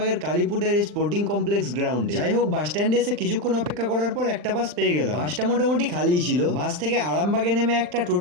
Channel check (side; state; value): left; late; 40 ms